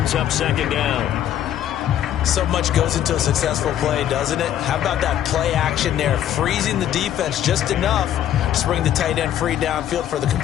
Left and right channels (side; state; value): right; quieter; 11.1 dB